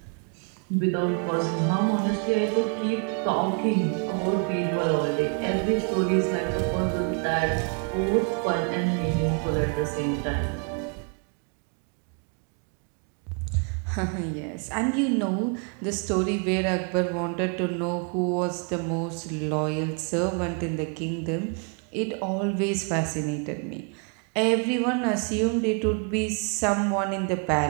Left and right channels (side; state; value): left; quieter; 38.6 dB